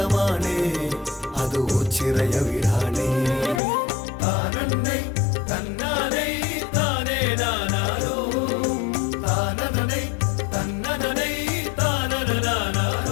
അത് ഓച്ചിറയ വീടാണേ താനന്നൈ തന്നാനൈ താനേ നാനാരോ താനനനൈ തന്നനനൈ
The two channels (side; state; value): right; drops out; at 3.6 s